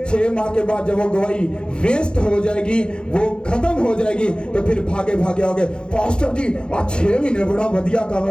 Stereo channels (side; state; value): right; late; 0.050 ms